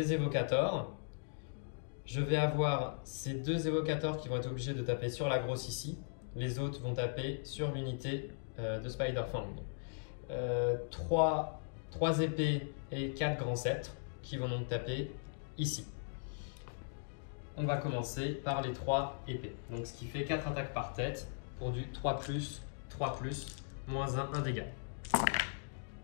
évocateurs. Je vais avoir ces 2 évocateurs qui vont être obligés de taper sur la grosse ici. Les autres vont taper sur l'unité de Spider-Fang. 3 épées et 4 grands sceptres qui vont donc taper ici. On va commencer par les 3 épées. Donc ce qui fait 4 attaques par tête pour du 3 plus, -1 dégât.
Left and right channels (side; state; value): right; silent; digital silence